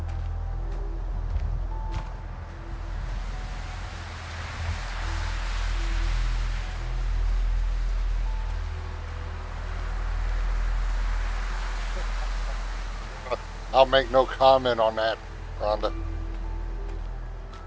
I'll make no comment on that, Rhondah.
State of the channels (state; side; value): identical; both; correlation 1.00